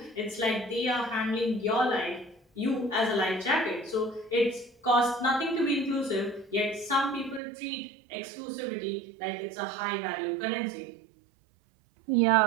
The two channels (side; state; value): left; drops out; at 7.4 s